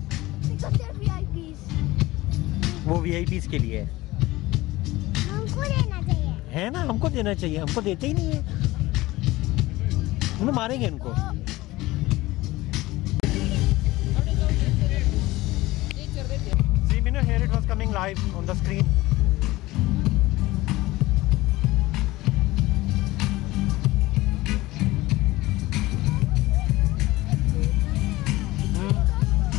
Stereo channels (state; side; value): quieter; right; 18.8 dB